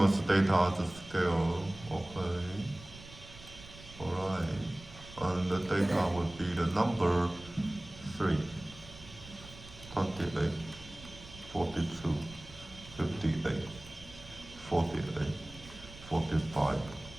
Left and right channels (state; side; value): noise; right; rumble, 17 dB below the sound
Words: data at the scale. Okay. Alright. And the data would be the number 3, 28, 42, 58, 48, 45,